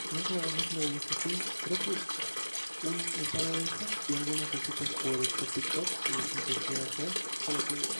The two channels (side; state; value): both; inverted; correlation -1.00